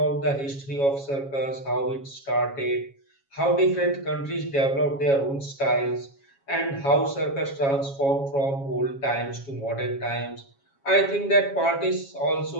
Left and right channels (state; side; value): late; right; 7.3 ms